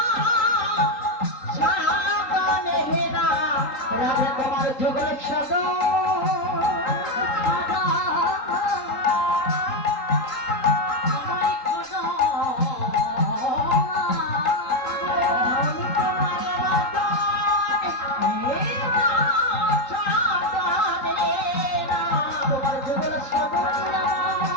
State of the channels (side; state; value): right; late; 3.8 ms